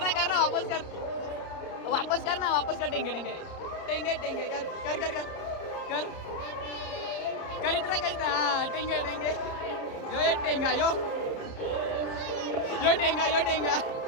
वापस कर टेंगे टेंगे टेंगे टेंगे कर इतना हाँ टेंगे टेंगे यो एक टेंगा यो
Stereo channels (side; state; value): right; late; 30 ms